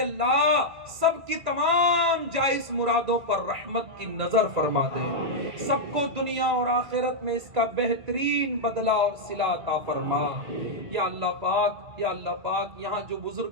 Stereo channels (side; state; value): left; late; 1.9 ms